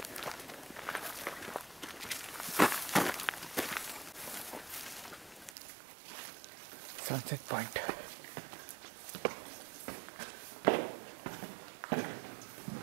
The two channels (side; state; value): left; drops out; at 5.5 s